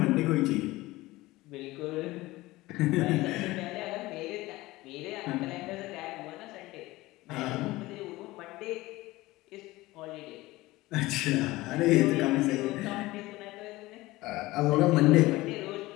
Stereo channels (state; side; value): quieter; right; 19.1 dB